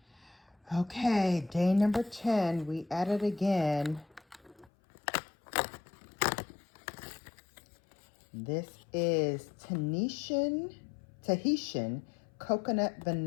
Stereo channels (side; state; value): right; drops out; at 4.7 s